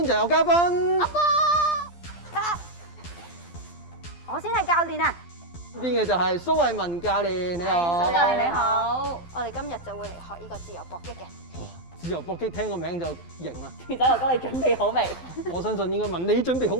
就有嘉賓。阿波，我先係教練啊！邊嘅就係蘇慧文教練，你好。蘇教練你好，我哋今日就會嚟學呢個自由搏擊嘅。自由搏擊聽個名就型啦。傑仔哥哥你準備好未？我相信應該問你準備好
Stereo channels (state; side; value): late; right; 12 ms